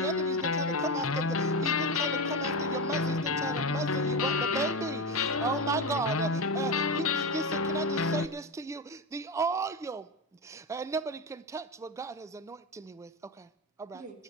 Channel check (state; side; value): normal; both; correlation 0.17